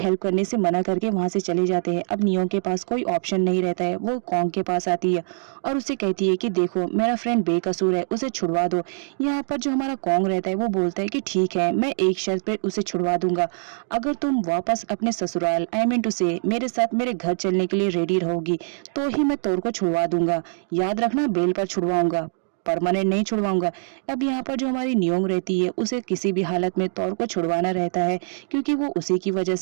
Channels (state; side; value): silent; left; digital silence